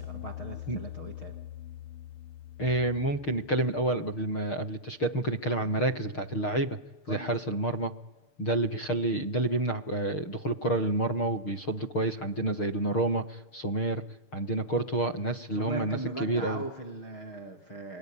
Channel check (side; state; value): right; late; 6.5 ms